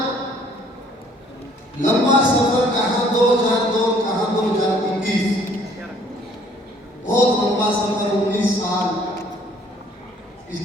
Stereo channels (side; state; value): both; normal; correlation 0.59